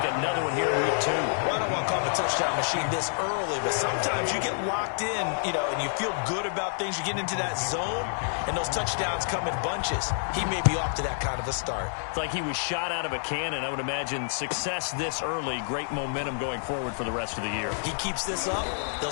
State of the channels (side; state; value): right; silent; digital silence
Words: another one here in week 2. Well, I don't want to call him a touchdown machine this early, but sometimes you get locked in, and you feel good about things. You get into that zone, and those touchdowns come in bunches. He may be off to that kind of a start. It's like he was shot out of a cannon. I would imagine success this early, great momentum going forward for the rest of the year. He keeps this up,